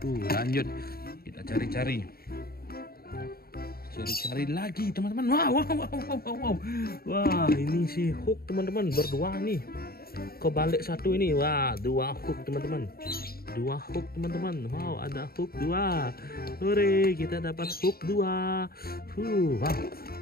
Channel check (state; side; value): late; right; 0.44 ms